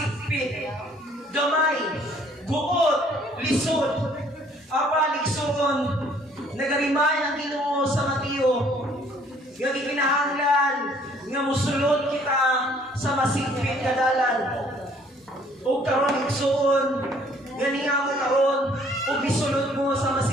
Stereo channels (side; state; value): both; normal; correlation 0.60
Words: gamay, guot, lisod. Apan igsuon nagarimay ang Ginoo sa Mateo nga gikinahanglan nga mosulod kita sa masigpit nga dalan. O karon igsuon gani nga mo karon ug gisulod mo sa